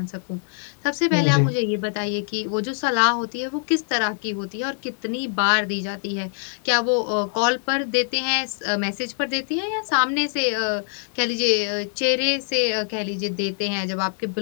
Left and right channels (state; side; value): silent; right; 59 dB below the other